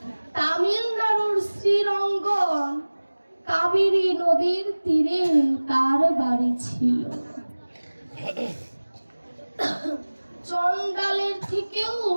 তামিলনাড়ুর শ্রীরঙ্গন কাবেরী নদীর তীরে তার বাড়ি ছিল। চণ্ডালের থেকেও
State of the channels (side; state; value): both; inverted; correlation -1.00